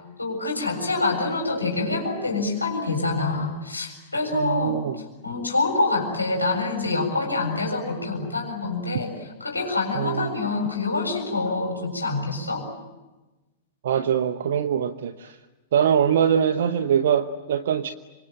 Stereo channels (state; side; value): inverted; both; correlation -0.55